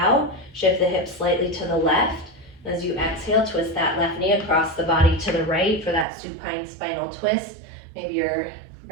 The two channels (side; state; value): left; drops out; at 6.1 s